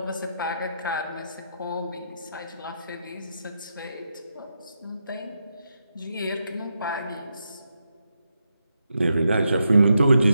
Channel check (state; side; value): inverted; both; correlation -0.84